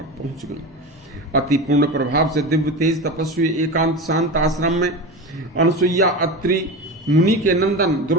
पहुंच गईं। अति पूर्ण प्रभाव से दिव्य तेज तपस्वी एकांत शांत आश्रम में अनसुईया अत्रि मुनि के नंदन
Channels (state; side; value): normal; both; correlation 0.26